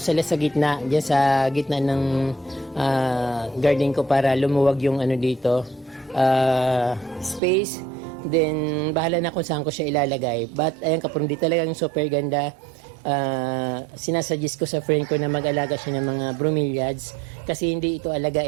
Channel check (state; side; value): drops out; left; at 7.4 s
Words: sa gitna, diyan sa gitna ng garden ko para lumuwag yung dito space. Then bahala na kung saan ko siya ilalagay. But ayun kapromdi, talagang super ganda. Sinasuggest ko sa friend ko na mag-alaga siya ng mga bromeliads kasi hindi ito